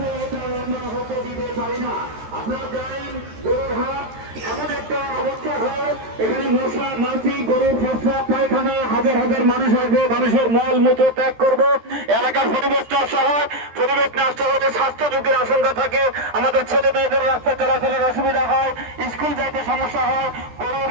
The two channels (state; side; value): late; left; 13 ms